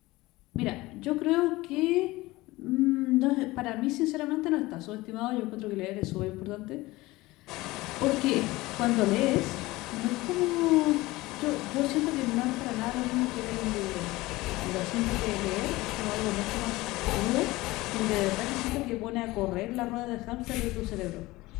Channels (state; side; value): quieter; right; 19.8 dB